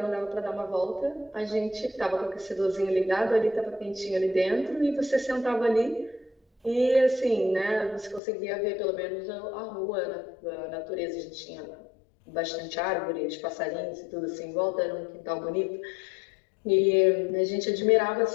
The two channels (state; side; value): drops out; right; at 8.2 s